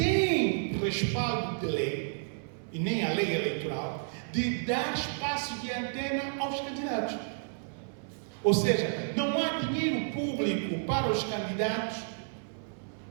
respaldo de lei, e nem a lei eleitoral, de dar espaço de antena aos candidatos. Ou seja, não há dinheiro público para os candidatos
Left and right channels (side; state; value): left; silent; digital silence